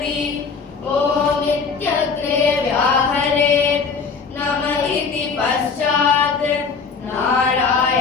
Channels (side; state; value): right; quieter; 5.2 dB